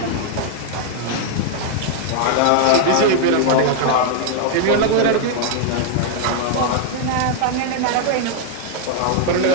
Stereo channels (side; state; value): both; different; correlation 0.00